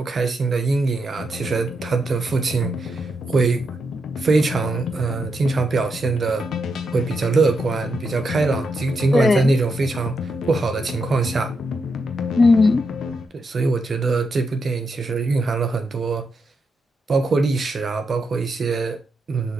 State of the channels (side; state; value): both; normal; correlation 0.83